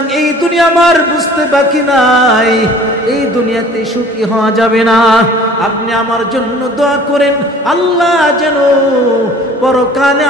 এই দুনিয়া আমার বুঝতে বাকি নাই, এই দুনিয়াতে সুখী হওয়া যাবে না। আপনি আমার জন্য দোয়া করেন, আল্লাহ যেন পরকালে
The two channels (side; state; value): both; normal; correlation 0.49